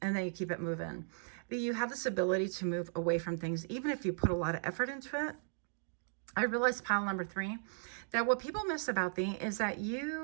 And then you keep it moving. But you have this ability to move away from things, even if you put a lot of effort into it. I realized, pile number 3, that what people miss about thee is that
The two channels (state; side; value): silent; left; digital silence